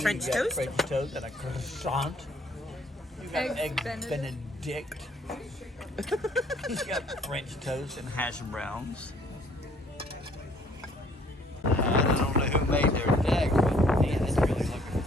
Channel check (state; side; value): normal; both; correlation 0.61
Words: French toast? French toast and a croissant. You got eggs Benedict. You got French toast and hash browns. I don't know who made their deck, but man, it's really looking